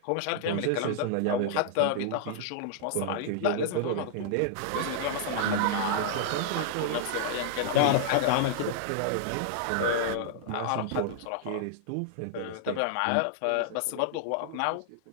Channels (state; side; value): different; both; correlation -0.01